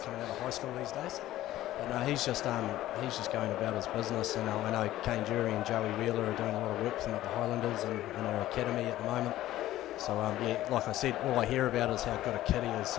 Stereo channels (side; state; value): right; quieter; 14.6 dB